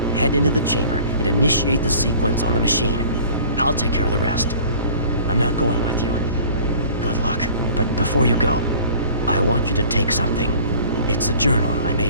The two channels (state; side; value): inverted; both; correlation -0.47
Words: Head into the chamber and initiate the sequence on the machine. I'll take care of the rest. I'm not going with you. Good luck. But before you go, I want you to take something. It's a journal I